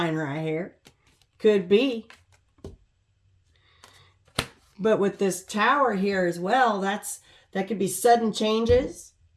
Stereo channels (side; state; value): both; identical; correlation 1.00